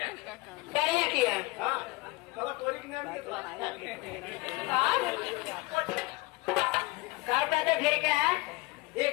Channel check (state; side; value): quieter; right; 22.3 dB